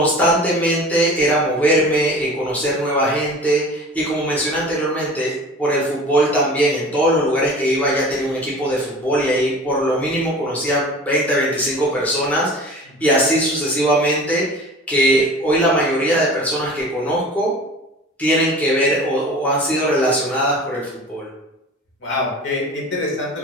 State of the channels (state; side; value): normal; both; correlation 0.40